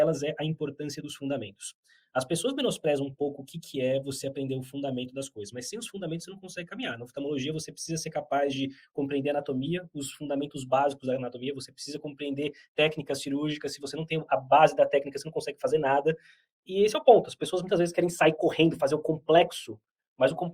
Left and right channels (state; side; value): identical; both; correlation 1.00